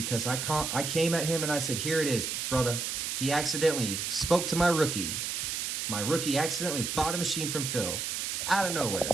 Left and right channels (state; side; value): noise; right; hiss, 2 dB below the sound